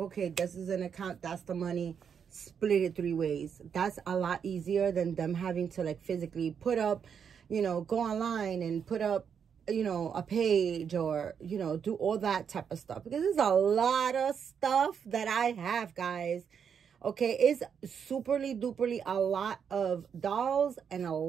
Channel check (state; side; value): quieter; left; 7.3 dB